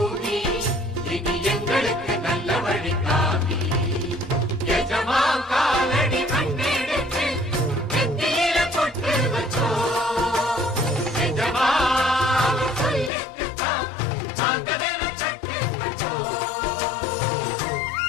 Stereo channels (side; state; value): right; drops out; at 13.1 s